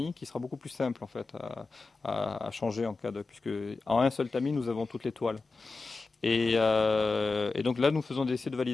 qui sera beaucoup plus simple en fait à changer en cas de, puisque en un seul tamis nous avons toutes les toiles. Et donc là nous faisons des essais de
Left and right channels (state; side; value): quieter; right; 3.9 dB